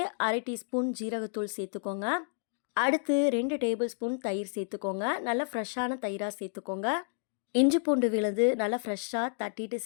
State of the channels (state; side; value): silent; right; digital silence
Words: 1/2 டீஸ்பூன் ஜீரகத்தூள் சேர்த்துக்கோங்க. அடுத்து 2 டேபிள் ஸ்பூன் தயிர் சேர்த்துக்கோங்க. நல்லா ஃப்ரெஷ்ஷான தயிராக சேர்த்துக்கோங்க. இஞ்சி பூண்டு விழுது நல்லா ஃப்ரெஷ்ஷாக தட்டிட்டு